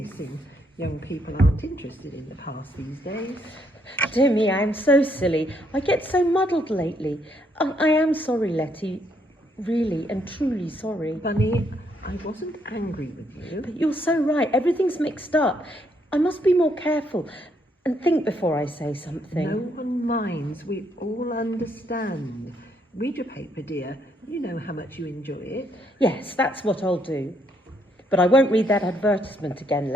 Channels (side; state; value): both; normal; correlation 0.72